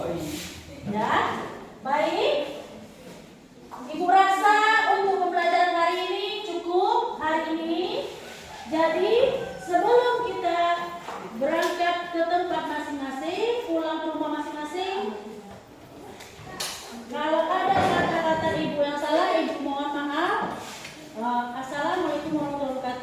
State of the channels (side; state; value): both; identical; correlation 1.00